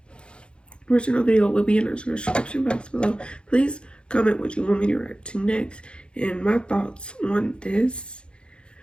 Original video will be in the description box below. Please comment what you want me to react to next, and my thoughts on this.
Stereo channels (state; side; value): late; right; 0.055 ms